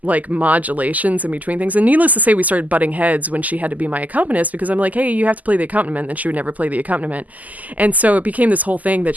modulations in between things. And needless to say, we started butting heads when she had to be my accompanist because I'm hey, you have to play the accompaniment, and she would never play the accompaniment. And so it became this whole thing that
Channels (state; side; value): late; left; 0.078 ms